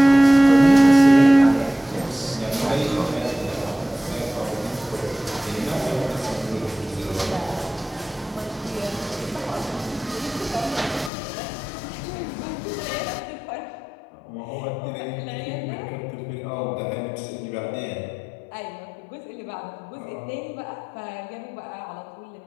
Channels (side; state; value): right; drops out; at 11.1 s